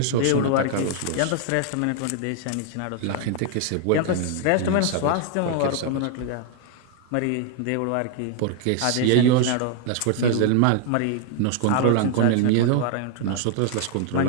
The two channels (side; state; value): both; different; correlation 0.00